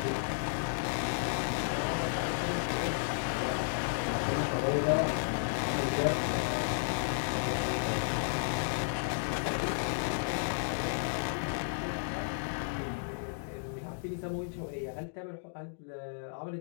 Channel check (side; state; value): right; silent; digital silence